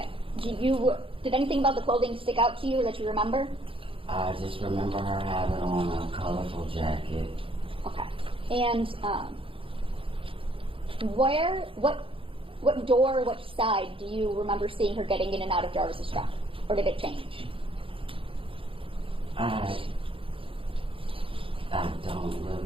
Did anything about the clothing stick out to you that you remember? I just remember her having on a colorful jacket. Okay. And what door, which side do you remember seeing her getting in and out of Jarvis's truck? Or did it change? I don't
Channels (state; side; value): late; left; 0.26 ms